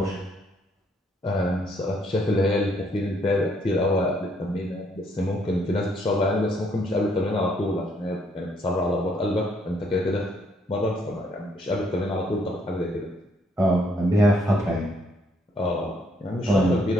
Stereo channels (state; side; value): normal; both; correlation 0.69